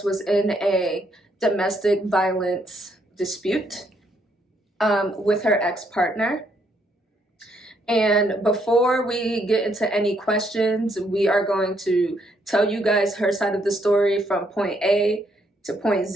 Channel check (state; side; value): normal; both; correlation 0.73